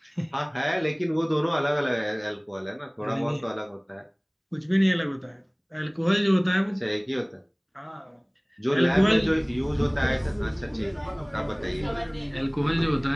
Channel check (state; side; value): identical; both; correlation 1.00